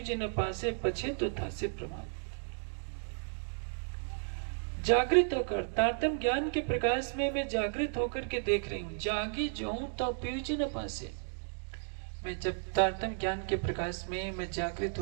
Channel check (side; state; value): left; silent; digital silence